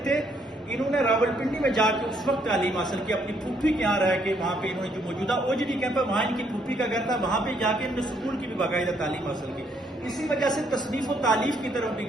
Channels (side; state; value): both; normal; correlation 0.70